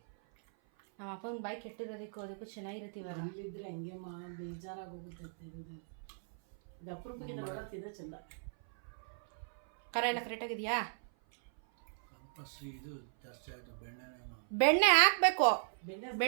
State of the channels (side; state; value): left; silent; 53 dB below the other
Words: ನಮ್ಮ ಅಪ್ಪನ ಬಾಯಿ ಕೆಟ್ಟಿರೋದಕ್ಕೂ ಅದಕ್ಕೂ ಚೆನ್ನಾಗಿರುತ್ತೆ ಇವಾಗ. ಅಲ್ಲಿದ್ರೆ ಹಂಗೆ ಬೇಜಾರಾಗಿ ಹೋಗುತ್ತೆ. ಇದು ಅಪರೂಪಕ್ಕೆ ತಿನ್ನೋ ಚಂದ. ಖಾರ ಎಲ್ಲ ಕರೆಕ್ಟಾಗಿದೆಯಾ? ಇದು ಜಾಸ್ತಿ ಆಯಿತು. ಬೆಣ್ಣೆ ಹಾಕಬೇಕು,